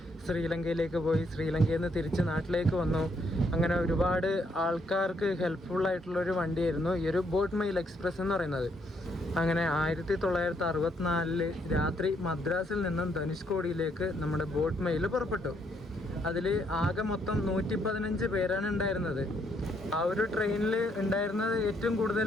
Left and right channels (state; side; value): normal; both; correlation 0.72